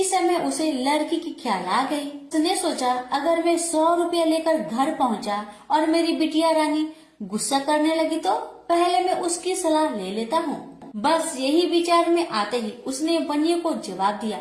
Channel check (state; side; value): identical; both; correlation 1.00